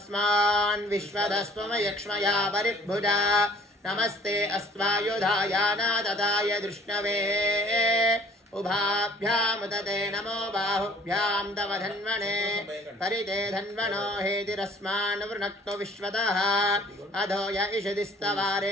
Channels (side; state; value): both; normal; correlation 0.54